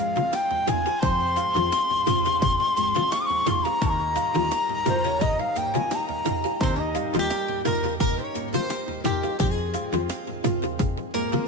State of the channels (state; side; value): normal; both; correlation 0.41